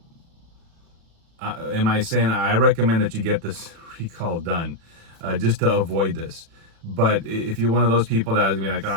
am I saying I recommend that you get this recall done just to avoid this? But if you're one of those people that is gonna be like, oh,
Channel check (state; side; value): late; left; 36 ms